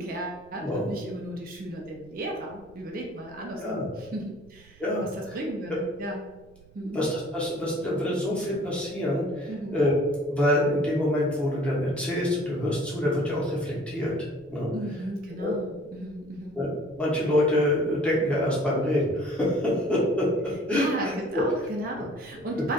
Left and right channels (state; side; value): noise; right; rumble, 26 dB below the sound